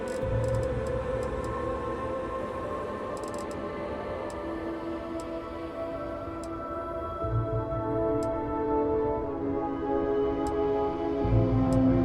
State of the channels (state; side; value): identical; both; correlation 1.00